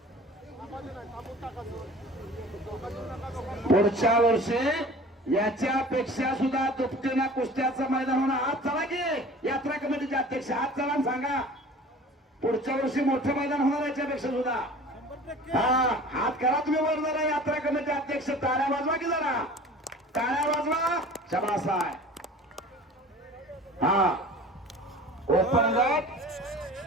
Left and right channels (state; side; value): normal; both; correlation 0.43